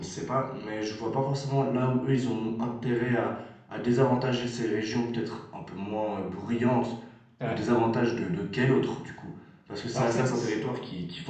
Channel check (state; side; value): identical; both; correlation 1.00